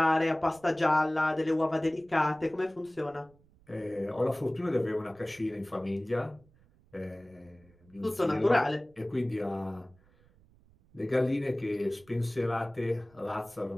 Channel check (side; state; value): right; noise; rumble, 29 dB below the sound